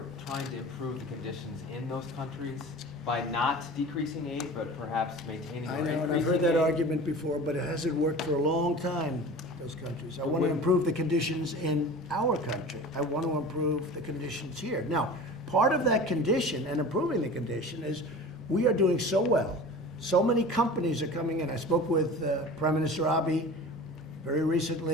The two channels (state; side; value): normal; both; correlation 0.37